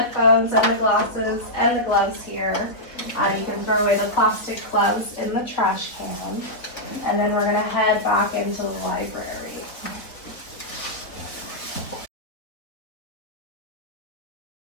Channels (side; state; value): right; late; 3.5 ms